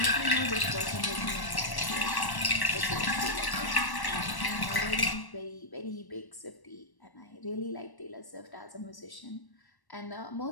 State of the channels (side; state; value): right; late; 1.1 ms